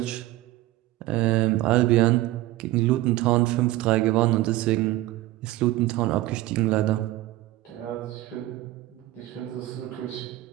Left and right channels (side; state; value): left; quieter; 16.9 dB